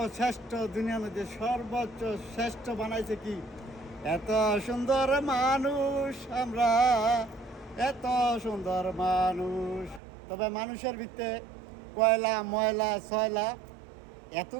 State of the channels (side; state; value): left; drops out; at 10.0 s